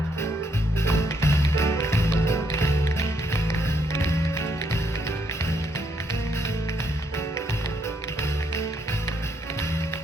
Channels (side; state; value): both; normal; correlation 0.74